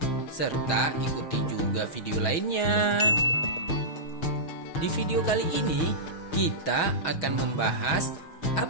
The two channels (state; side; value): late; right; 6.2 ms